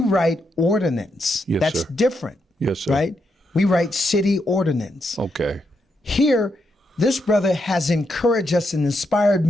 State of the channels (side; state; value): both; normal; correlation 0.81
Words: ordinance. Yes, That's sir. different. Yes, sir. Right? We write city ordinance. Okay. Here, this brother has encouraged us and inspired